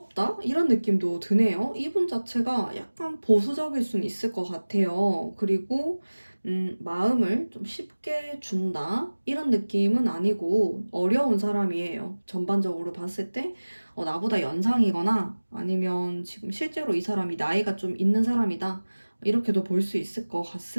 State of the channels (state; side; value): inverted; both; correlation -1.00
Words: 이런 느낌도 드네요. 이분 자체가 약간 보수적일 수는 있을 것 같아요. 그리고 마음을 좀 쉽게 준다? 이런 느낌은 아니고 어려운 사람이에요. 전반적으로 봤을 때 나보다 연상이거나 아니면 지금 실제로 이 사람이 나이가 좀 있는 사람이다. 이렇게도 볼 수 있을 것